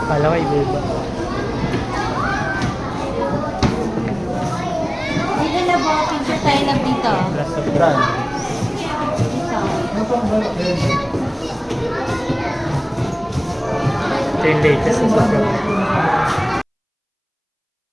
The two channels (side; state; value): both; identical; correlation 1.00